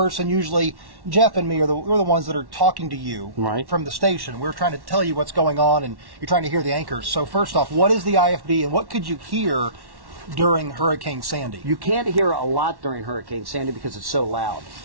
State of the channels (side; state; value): left; late; 1.1 ms